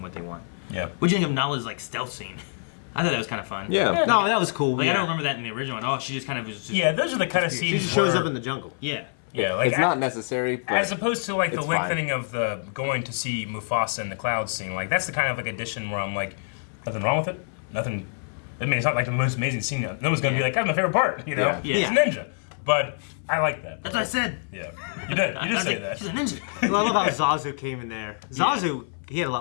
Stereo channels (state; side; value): silent; right; 60 dB below the other